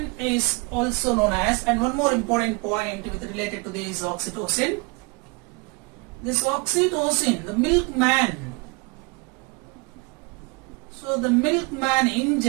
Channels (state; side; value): quieter; left; 29.4 dB